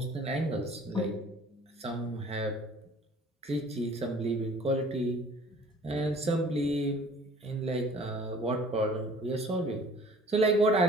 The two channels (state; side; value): normal; both; correlation 0.51